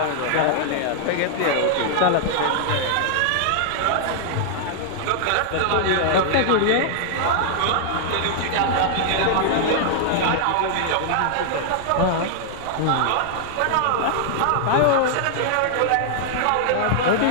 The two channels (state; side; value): different; both; correlation -0.01